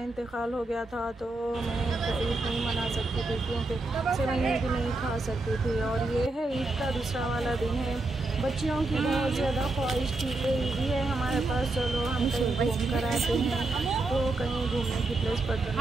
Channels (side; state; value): left; quieter; 3.1 dB